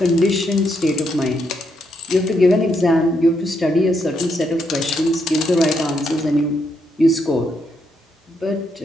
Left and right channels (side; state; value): both; normal; correlation 0.78